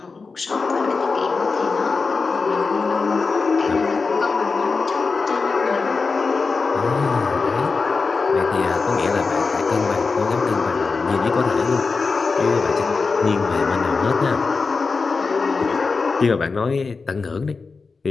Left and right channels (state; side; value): quieter; right; 4.4 dB